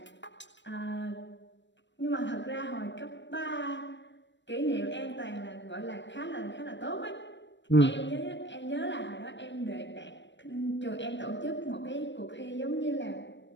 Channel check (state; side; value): late; right; 0.53 ms